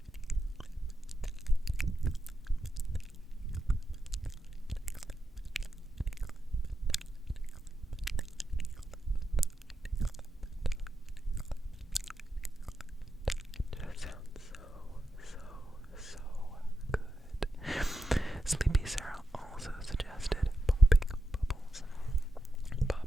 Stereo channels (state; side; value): normal; both; correlation 0.88